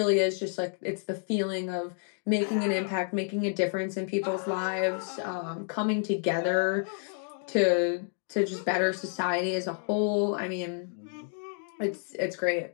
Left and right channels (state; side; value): silent; right; 55 dB below the other